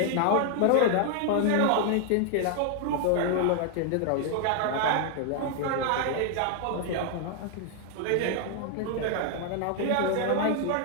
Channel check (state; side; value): different; both; correlation 0.00